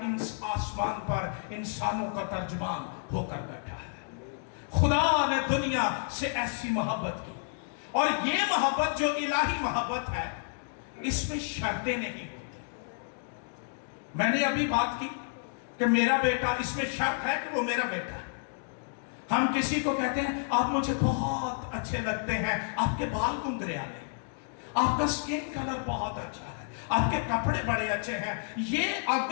पर इंसानों का तर्जुमान होकर बैठा है। खुदा ने दुनिया से ऐसी मोहब्बत की, और ये मोहब्बत जो इलाही मोहब्बत है, इसमें शर्तें नहीं होती। मैंने अभी बात की कि मेरा बेटा, इसमें शर्त है कि वो मेरा बेटा है। हम किसी को कहते हैं, आप मुझे बहुत अच्छे लगते हैं, आपके बाल गुंगरियाले, आपका स्किन कलर बहुत अच्छा है, आपके कपड़े बड़े अच्छे हैं। ये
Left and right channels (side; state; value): right; silent; digital silence